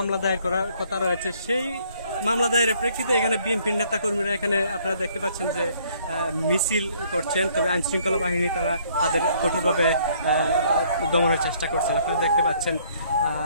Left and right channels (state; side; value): inverted; both; correlation -0.63